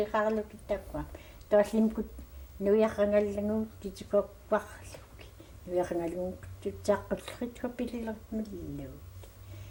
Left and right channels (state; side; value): identical; both; correlation 1.00